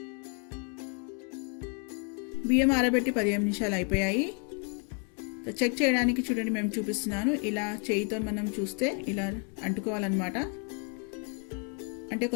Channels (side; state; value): right; quieter; 37.9 dB